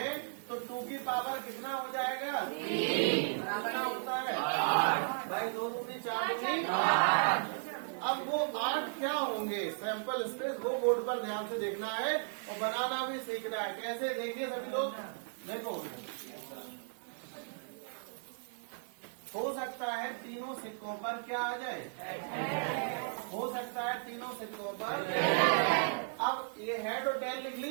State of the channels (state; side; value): silent; left; 54 dB below the other